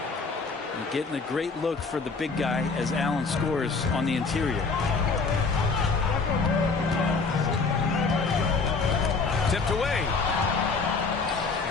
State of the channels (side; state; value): right; quieter; 4.4 dB